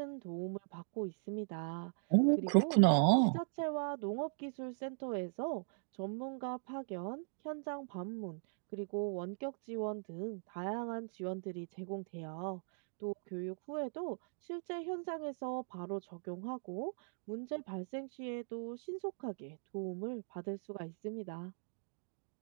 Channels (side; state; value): left; silent; digital silence